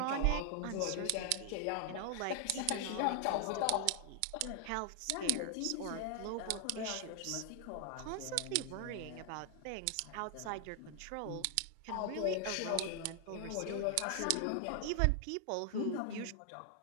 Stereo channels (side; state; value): both; different; correlation 0.00